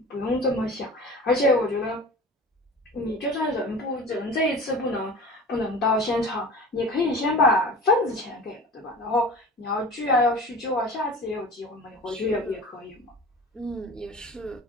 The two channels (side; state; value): both; normal; correlation 0.38